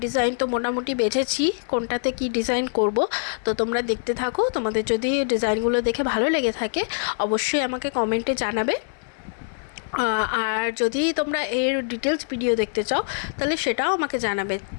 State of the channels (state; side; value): silent; right; 62 dB below the other